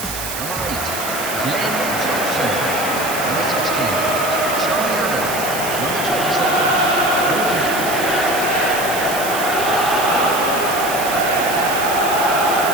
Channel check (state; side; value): noise; right; hiss, 7 dB below the sound